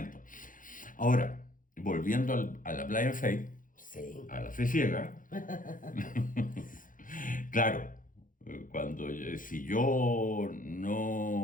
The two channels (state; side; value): late; right; 0.39 ms